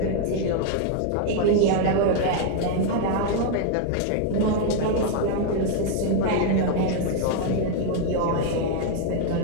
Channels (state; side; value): different; both; correlation 0.00